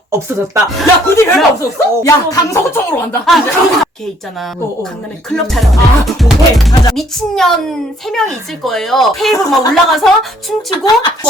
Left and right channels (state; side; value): normal; both; correlation 0.63